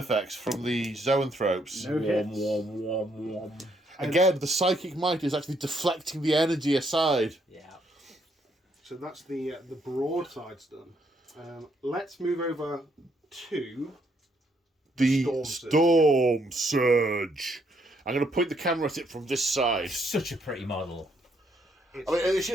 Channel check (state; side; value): normal; both; correlation 0.72